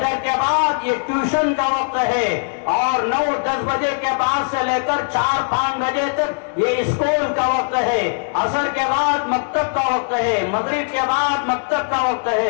کے بعد یہ ٹیوشن کا وقت ہے، اور 9-10 بجے کے بعد سے لے کر 4-5 بجے تک یہ اسکول کا وقت ہے، عصر کے بعد مکتب کا وقت ہے، مغرب کے بعد مکتب کا وقت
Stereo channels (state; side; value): silent; right; digital silence